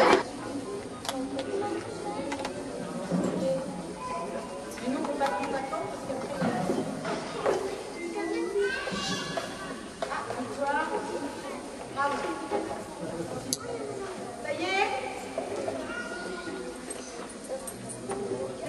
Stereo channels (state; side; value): identical; both; correlation 1.00